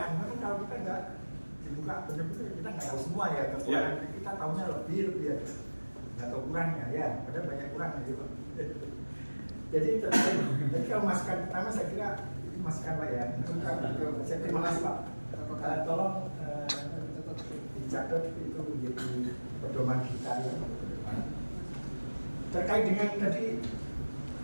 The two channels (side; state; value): both; inverted; correlation -1.00